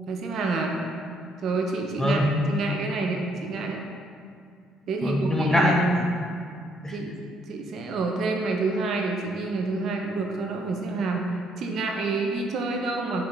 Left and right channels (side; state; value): both; normal; correlation 0.70